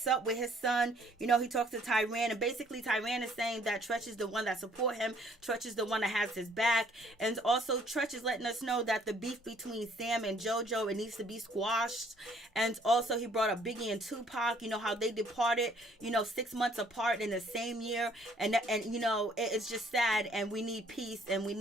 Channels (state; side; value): normal; both; correlation 0.61